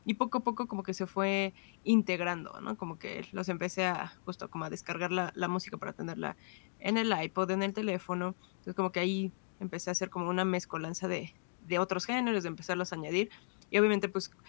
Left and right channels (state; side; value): silent; right; digital silence